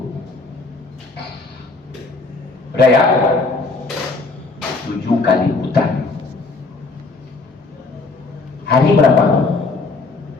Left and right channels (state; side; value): quieter; right; 3.8 dB